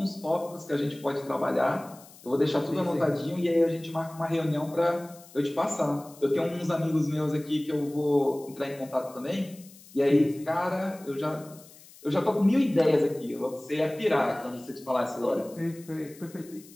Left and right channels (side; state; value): left; noise; hiss, 22 dB below the sound